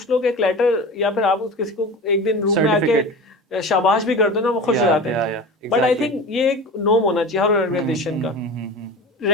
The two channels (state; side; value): normal; both; correlation 0.33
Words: लोग एक लेटर या फिर आप किसी को एक दिन रूम में आके शाबाश भी कर दो ना, वो खुश हो जाते हैं। बट आई थिंक ये एक नॉर्म होना चाहिए हर ऑर्गेनाइजेशन का,